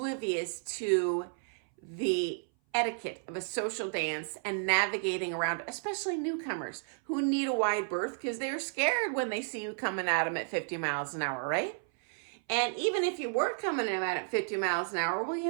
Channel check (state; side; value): silent; left; 56 dB below the other